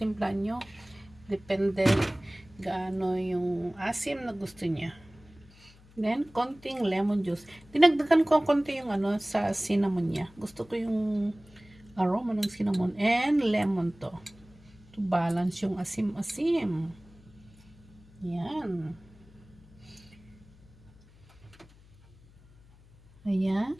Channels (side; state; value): left; noise; hum, 25 dB below the sound